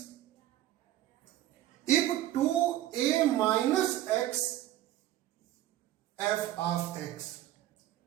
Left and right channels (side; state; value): left; quieter; 14.0 dB